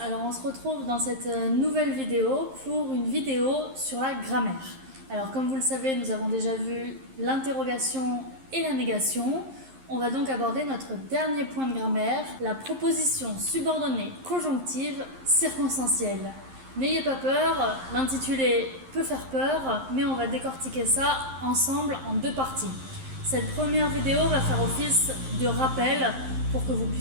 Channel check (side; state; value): left; late; 11 ms